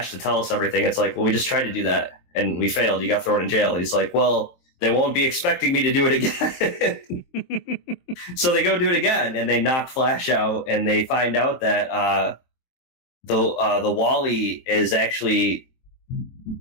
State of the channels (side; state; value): right; late; 23 ms